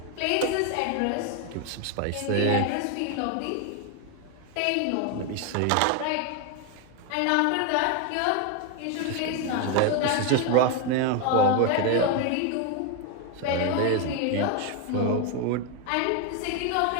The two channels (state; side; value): different; both; correlation 0.01